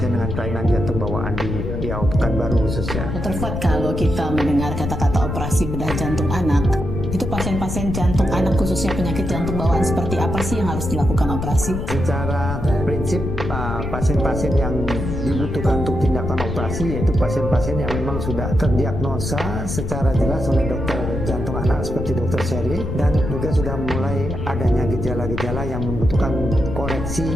dengan kelainan jantung bawaan di Riau, Pekanbaru khususnya. Dr. Fuad, kalau kita mendengar kata-kata operasi bedah jantung anak, itu pasien-pasien jantung anak khususnya penyakit jantung bawaan seperti apa sih yang harus dilakukan operasi? Secara prinsip pasien-pasien yang dibutuhkan untuk tindakan operasi yaitu pasien-pasien yang memang sudah terdiagnosa secara jelas oleh dokter jantung anak seperti Dr. Sherry, dan juga sudah mulai adanya gejala-gejala yang membutuhkan koreksi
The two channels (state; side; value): noise; left; rumble, 4 dB below the sound